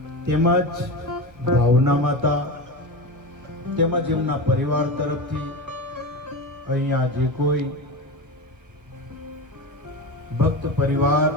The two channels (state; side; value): late; left; 1.6 ms